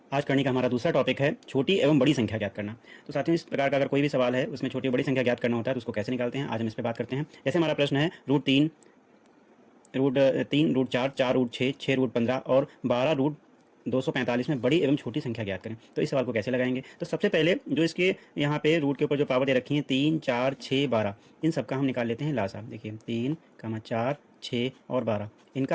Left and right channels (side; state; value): both; identical; correlation 1.00